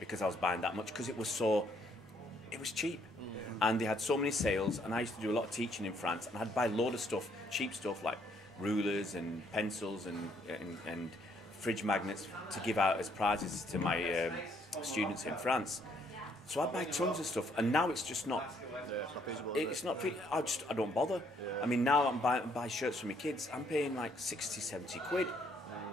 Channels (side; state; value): both; normal; correlation 0.68